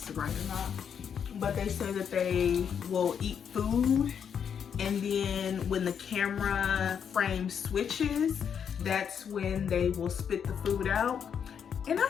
is right or not, but they say that they will eat food and then when the camera frame switches, that's when they will spit the food out. And I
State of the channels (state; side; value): quieter; right; 7.6 dB